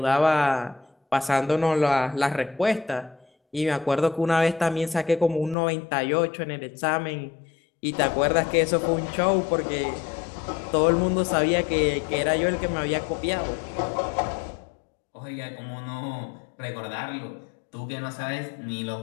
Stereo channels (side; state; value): right; drops out; at 5.6 s